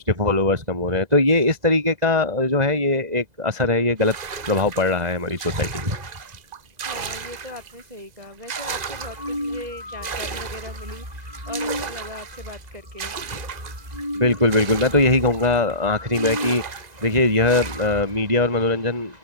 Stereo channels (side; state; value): left; late; 2.0 ms